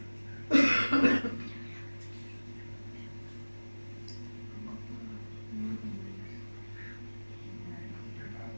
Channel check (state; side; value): inverted; both; correlation -1.00